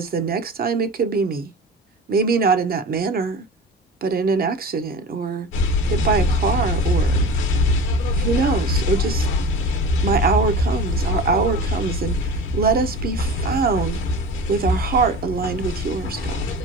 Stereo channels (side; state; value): both; normal; correlation 0.34